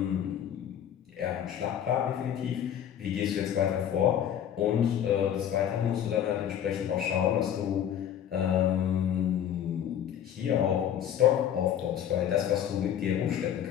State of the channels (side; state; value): right; quieter; 9.9 dB